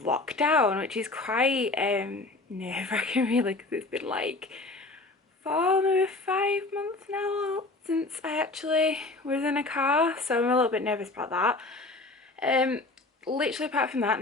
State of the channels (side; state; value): right; quieter; 3.2 dB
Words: lockdown, which is quite nerve-wracking really, because it's been like 4, maybe 5 months now since I actually was in a car, so I'm a little bit nervous about that. Literally apart from that,